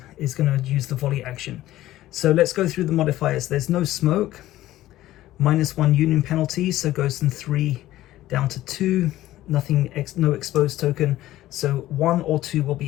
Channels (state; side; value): quieter; right; 15.0 dB